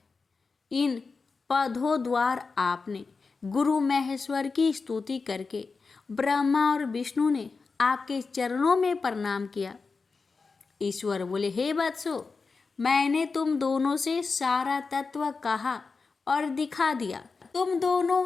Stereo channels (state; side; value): quieter; right; 4.5 dB